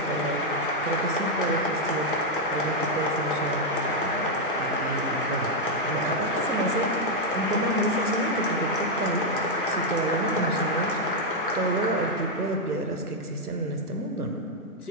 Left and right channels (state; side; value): normal; both; correlation 0.00